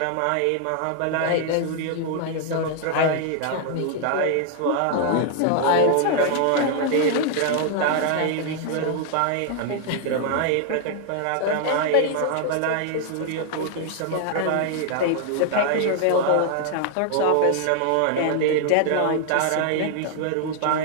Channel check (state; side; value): different; both; correlation 0.00